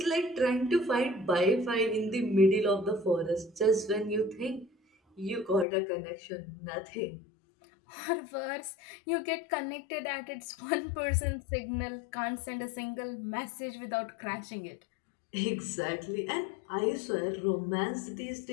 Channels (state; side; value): drops out; right; at 5.7 s